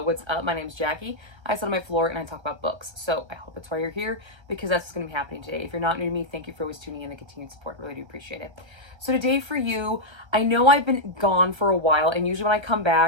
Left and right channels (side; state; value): left; late; 1.3 ms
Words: what's up? My name's Jackie. I sit on my floor and I talk about books. So I hope that's why you're here, because that's what's going to be happening today. If you're not new to me, thank you for always tuning in and continued support. I really do appreciate it. So today for you, I know I've been gone for a while, and usually when I come